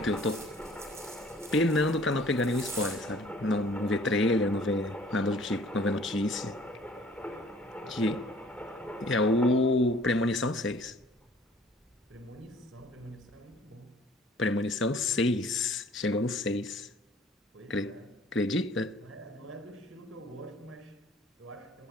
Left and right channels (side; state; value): both; normal; correlation 0.54